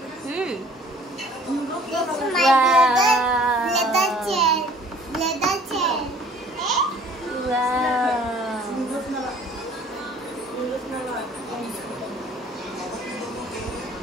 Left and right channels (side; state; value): both; normal; correlation 0.53